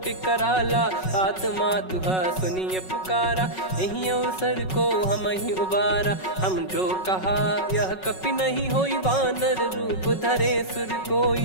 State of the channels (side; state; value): right; late; 5.4 ms